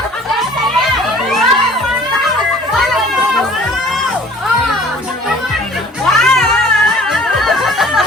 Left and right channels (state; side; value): normal; both; correlation 0.51